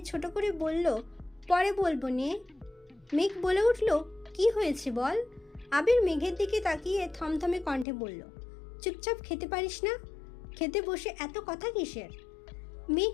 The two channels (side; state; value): right; drops out; at 7.9 s